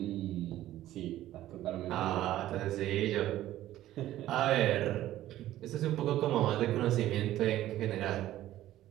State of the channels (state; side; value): quieter; left; 14.0 dB